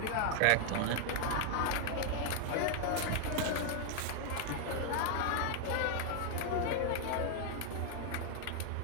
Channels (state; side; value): different; both; correlation 0.00